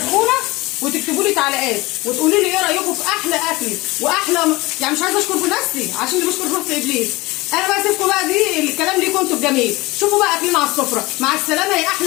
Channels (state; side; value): quieter; right; 21.7 dB